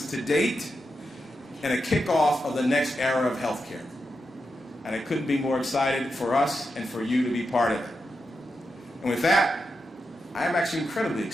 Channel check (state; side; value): normal; both; correlation 0.88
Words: to date and a kickoff of the next era of healthcare. And I couldn't be more excited for us and for you to be part of it. And with that, I am actually incredibly